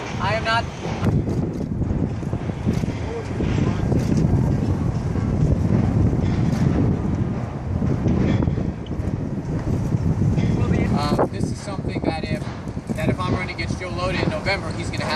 I am not. This is something that if I'm running against Joe Lota in November, he's going to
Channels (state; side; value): identical; both; correlation 1.00